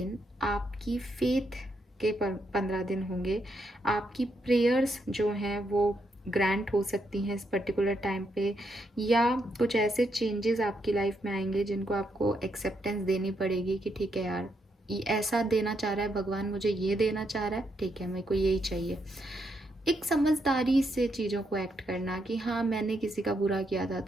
आपकी फेथ के 15 दिन होंगे। आपकी प्रेयर्स जो हैं वो ग्रांट हो सकती हैं इस पर्टिकुलर टाइम पे, या कुछ ऐसे चेंजेस आपकी लाइफ में आएंगे जिनको आपको एक्सेप्टेंस देनी पड़ेगी कि ठीक है यार, ये ऐसा देना चाह रहा है भगवान, मुझे ये देना चाह रहा है, ठीक है मेरे को यही चाहिए। एक समझदारी से चीज़ों को एक्ट करना कि हाँ मैंने किसी का बुरा किया था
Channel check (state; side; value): normal; both; correlation 0.79